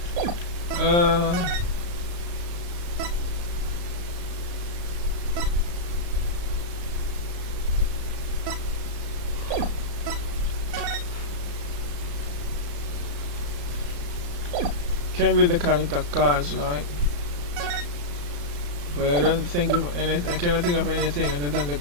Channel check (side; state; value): left; late; 34 ms